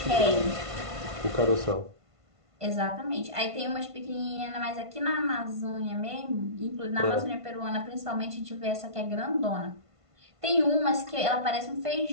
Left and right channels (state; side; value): late; left; 1.5 ms